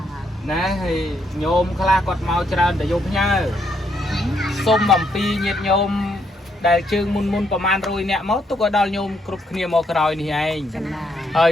ណាហើយញោមខ្លះគាត់មកច្រើនតែយកផ្ញើសុំអំពីញាតិញោមដែលជើងមុនប្រហែល100នាក់មកទុកឲ្យដល់ញោមគ្រប់គ្នាមកក្រោយនេះឯងហើយ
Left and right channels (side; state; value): both; normal; correlation 0.75